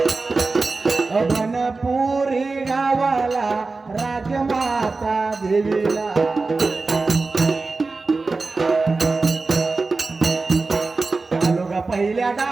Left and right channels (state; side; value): quieter; left; 3.8 dB